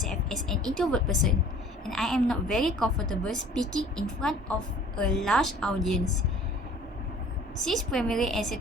as an introvert person, and I am not very comfortable speaking in front of a large audience. Since primary and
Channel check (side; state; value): both; normal; correlation 0.50